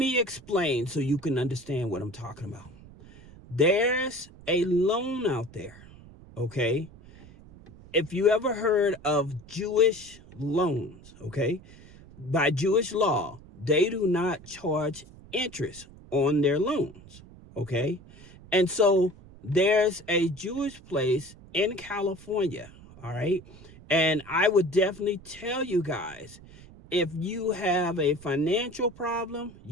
explain so you can understand what I'm talking about. There's a loan out there, okay? If you ever heard of Jewish loans, okay? By Jewish law, they do not charge interest on their loans, okay? And so there's a Jewish place in California, all right? And I would definitely tell you guys, if you have a financial problem,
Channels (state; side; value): noise; right; rumble, 21 dB below the sound